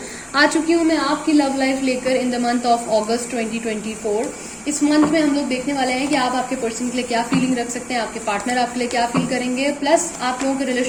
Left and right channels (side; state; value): both; identical; correlation 1.00